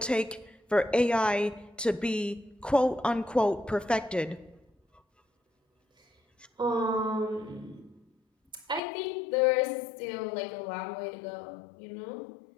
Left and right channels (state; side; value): drops out; right; at 8.8 s